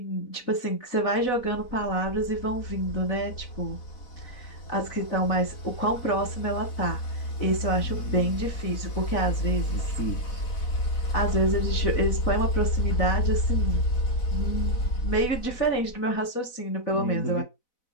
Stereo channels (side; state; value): right; late; 4.0 ms